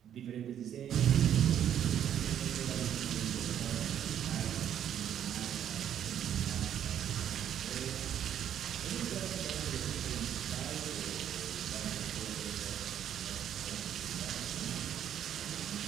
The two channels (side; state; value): left; quieter; 9.9 dB